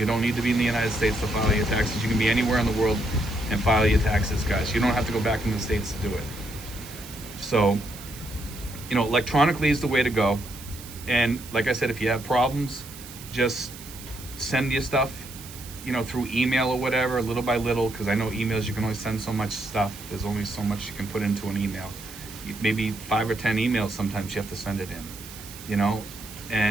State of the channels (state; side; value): noise; right; hiss, 15 dB below the sound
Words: don't need to be in the United States to file your taxes. You can be anywhere in the world and file your taxes, guys. You don't have to go back in the States to do it. So, electronically is the way to go. And like I said, if you have problems, just send your stuff, through email or whatever, little by little, because I know emails, you can only send so much stuff. There's only so much you can put into an email. Maybe 5 or 10 emails sometimes you have to send it in,